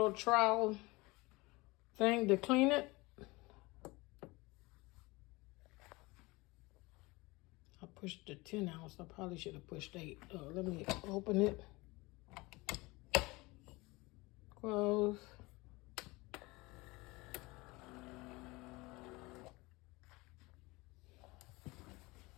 trowel thing to clean it. I pushed the 10 ounce. I probably should have pushed 8. Let me open it. Close.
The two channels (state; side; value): quieter; right; 23.2 dB